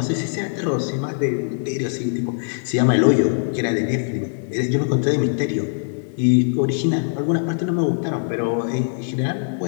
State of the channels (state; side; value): silent; right; digital silence